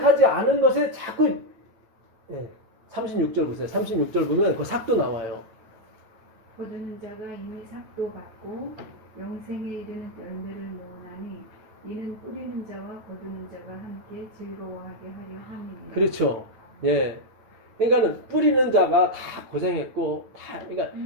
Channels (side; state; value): left; late; 9.2 ms